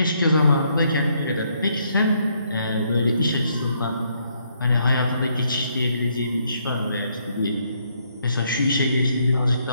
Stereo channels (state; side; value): inverted; both; correlation -0.73